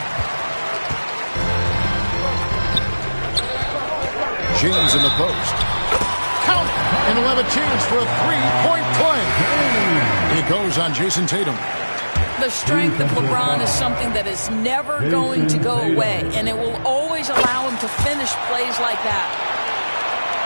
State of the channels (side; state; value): both; inverted; correlation -1.00